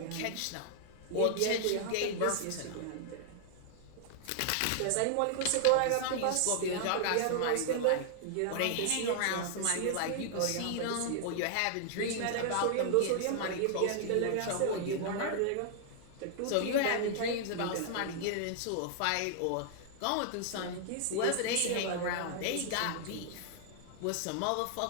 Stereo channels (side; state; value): both; different; correlation 0.00